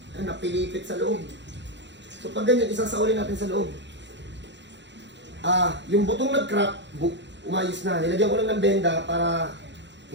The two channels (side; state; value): left; late; 0.52 ms